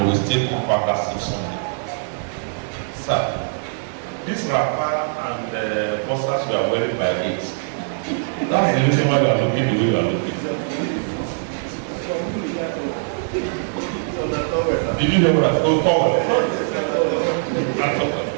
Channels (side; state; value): left; silent; 55 dB below the other